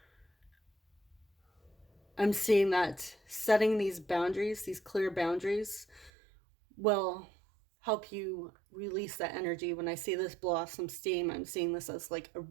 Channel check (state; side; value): drops out; left; at 6.1 s